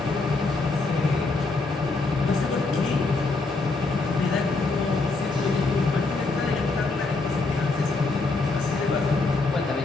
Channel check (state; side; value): quieter; right; 3.6 dB